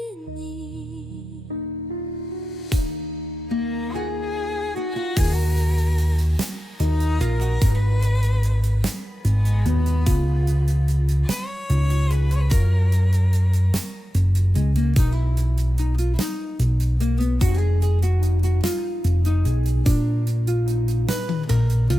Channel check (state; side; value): normal; both; correlation 0.93